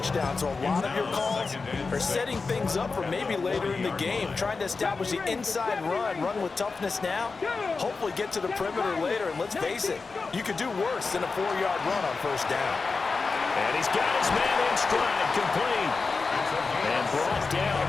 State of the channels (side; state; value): right; quieter; 4.3 dB